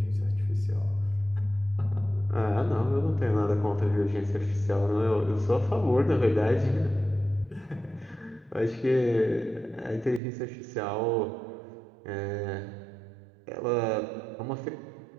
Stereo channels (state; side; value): drops out; left; at 10.2 s